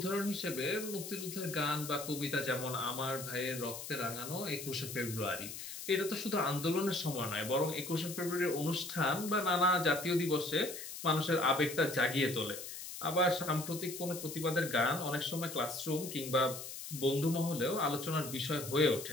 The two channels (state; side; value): noise; left; hiss, 9 dB below the sound